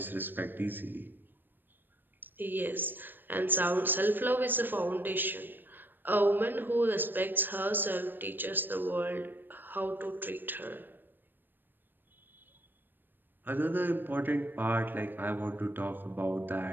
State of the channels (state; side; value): late; left; 0.093 ms